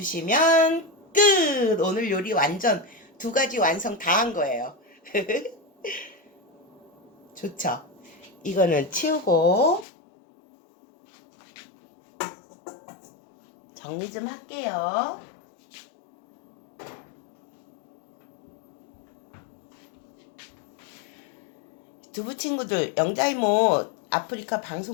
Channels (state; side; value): drops out; right; at 9.9 s